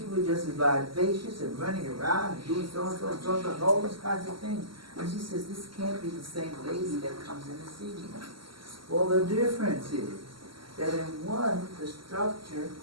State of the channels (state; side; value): late; left; 0.74 ms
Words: was just vivacious and running around and doing so-and-so and so-and-so and all these kinds of things. And she says, this can't be the same lady that comes in to see me. Well, the difference is that in one, the structure